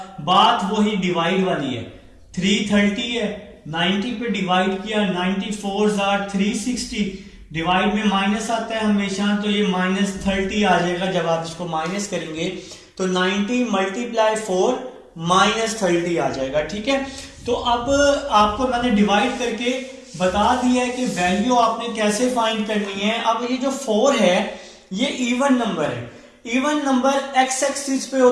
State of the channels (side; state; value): both; identical; correlation 1.00